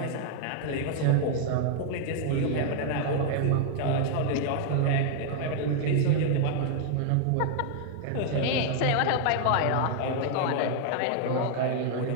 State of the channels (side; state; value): both; different; correlation 0.00